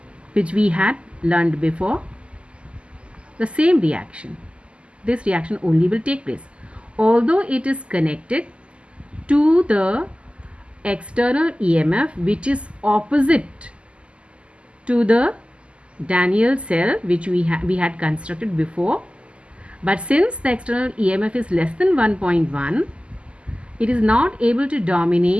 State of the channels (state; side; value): late; left; 0.054 ms